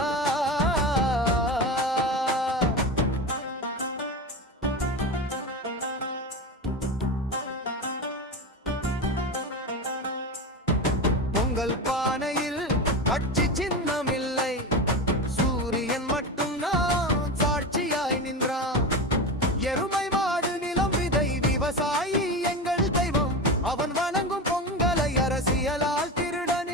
பொங்கல் பானையில் கட்சி சின்னம் இல்லை, சூரியன் மட்டும் நான் சாட்சியாய் நின்றான். எருமை மாடு நிலம் விதை விவசாயி எங்கள் தெய்வம், அவன் வணங்கும் பொங்கலை அரசியலால் திருட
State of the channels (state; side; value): normal; both; correlation 0.23